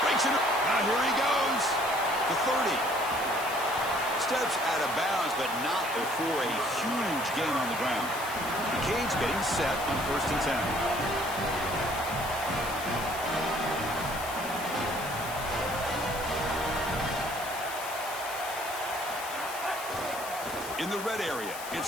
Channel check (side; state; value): left; noise; hiss, 11 dB below the sound